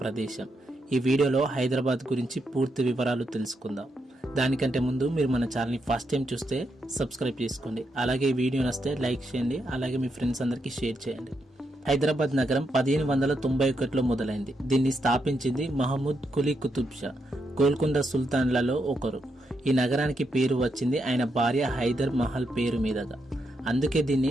ప్రదేశం. ఈ వీడియోలో హైదరాబాద్ గురించి పూర్తి వివరాలు తెలుసుకుందాం. దానికంటే ముందు మీరు మన ఛానల్ని ఫస్ట్ టైం చూస్తే సబ్స్క్రైబ్ చేసుకోండి. అలాగే ఈ వీడియో నచ్చితే లైక్ చేయండి. అలాగే మీ ఫ్రెండ్స్ అందరికీ షేర్ చేయండి. హైదరాబాద్ నగరం 1591లో మొదలైంది. దీన్ని స్థాపించింది మహమూద్ కులీ కుతుబ్ షా, గోల్కొండ సుల్తాన్లలో ఒకరు. ఈ నగరానికి పేరు వచ్చింది ఆయన భార్య హైదర్ మహల్ పేరు మీదుగా. అందుకే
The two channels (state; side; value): normal; both; correlation 0.81